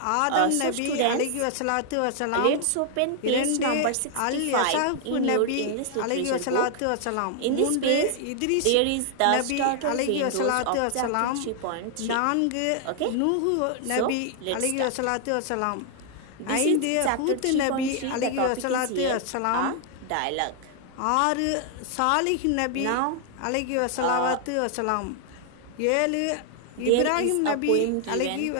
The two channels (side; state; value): both; different; correlation 0.00